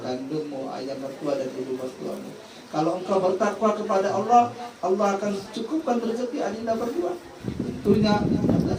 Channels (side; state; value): both; identical; correlation 1.00